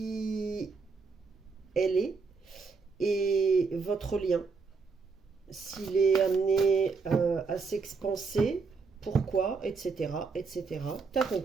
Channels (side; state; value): left; quieter; 4.7 dB